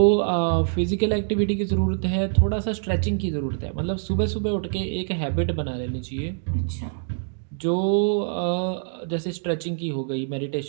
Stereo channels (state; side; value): silent; left; digital silence